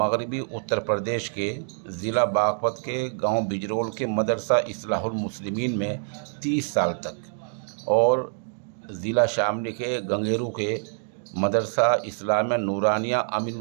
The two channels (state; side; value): silent; left; digital silence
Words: اتر پردیش کے ضلع باغپت کے گاؤں بجرول کے مدرسہ اصلاح المسلمین میں 30 سال تک اور ضلع شاملی کے گنگیرو کے مدرسہ اسلامیہ نورانیہ امین